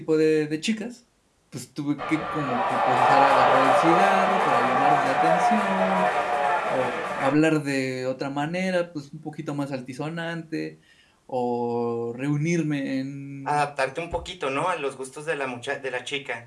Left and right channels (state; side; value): identical; both; correlation 1.00